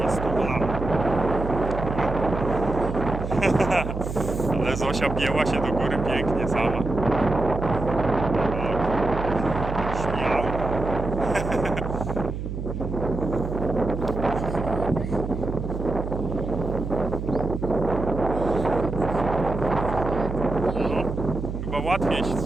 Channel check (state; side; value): noise; right; hum, 5 dB below the sound